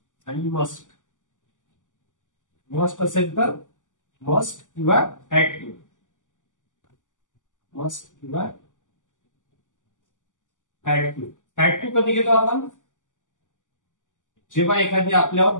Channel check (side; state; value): right; late; 0.87 ms